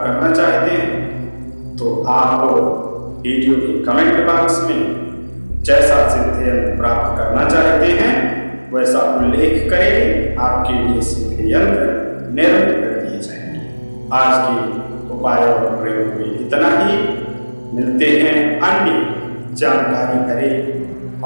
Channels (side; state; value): both; inverted; correlation -1.00